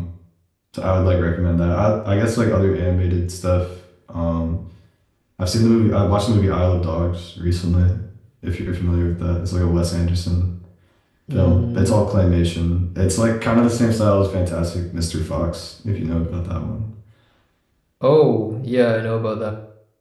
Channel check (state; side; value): identical; both; correlation 1.00